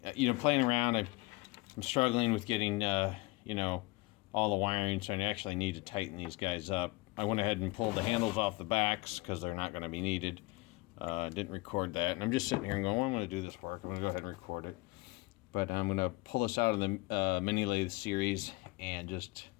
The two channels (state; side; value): quieter; right; 23.1 dB